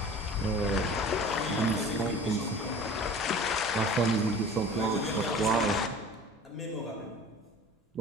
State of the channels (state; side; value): normal; both; correlation 0.42